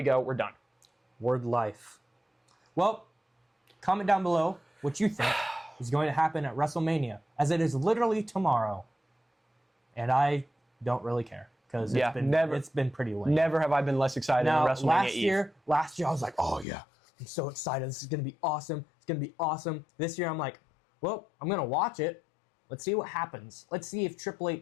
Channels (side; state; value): right; drops out; at 16.7 s